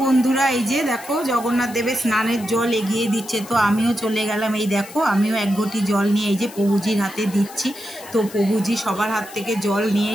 বন্ধুরা, এই যে দেখো জগন্নাথ দেবের স্নানের জল এগিয়ে দিচ্ছে। তো আমিও চলে গেলাম, এই দেখো আমিও এক ঘটি জল নিয়ে এই যে প্রভুজির হাতে দিচ্ছি। তো প্রভুজি সবার হাত থেকে জল নিয়ে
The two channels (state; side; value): noise; left; hiss, 17 dB below the sound